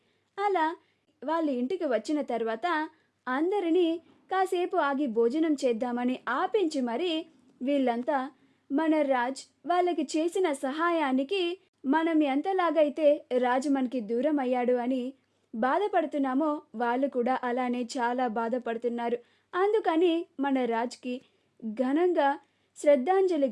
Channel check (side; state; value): both; identical; correlation 1.00